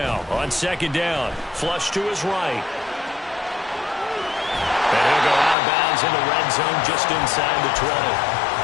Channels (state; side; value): drops out; right; at 5.6 s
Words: on second down. Flush to his right. And he'll go out of bounds in the red zone just inside the 20.